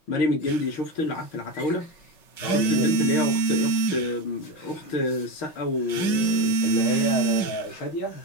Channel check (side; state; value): right; late; 5.4 ms